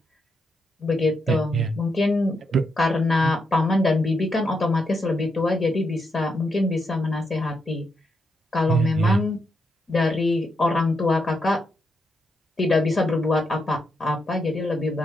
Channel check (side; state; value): both; normal; correlation 0.82